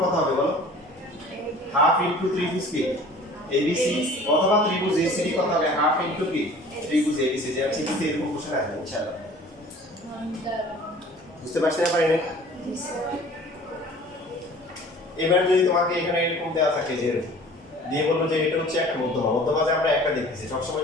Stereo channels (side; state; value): both; normal; correlation 0.47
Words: কত হবে বলো হাফ ইনটু ত্রিভুজ কি এবিসি অথবা ত্রিভুজ এসিডি কত হবে হাফ ইনটু কি ত্রিভুজ এবিসি যে আছে কিন্তু এরকম কোশ্চেন আসবে ইনশাআল্লাহ বুঝতে পারছেন না পারেন এবার যদি তোমাকে এখানে এরকম দেওয়া থাকে যে দিয়ে বলবো যে এটা হচ্ছে একটা মধ্যমা মধ্যমা যে আমরা একটা দেখতেছি